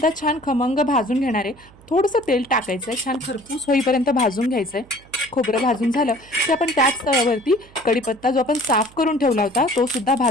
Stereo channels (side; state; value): right; noise; hum, 25 dB below the sound